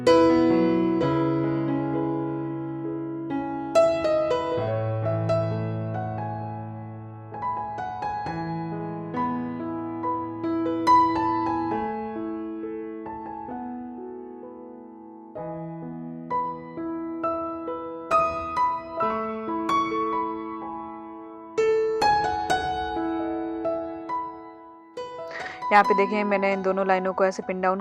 यहाँ पे देखें मैंने इन दोनों लाइनों को ऐसे पिन डाउन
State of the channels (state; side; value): identical; both; correlation 1.00